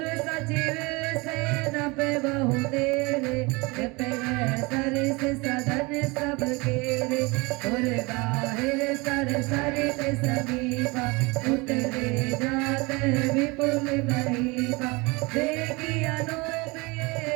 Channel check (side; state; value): left; quieter; 25.7 dB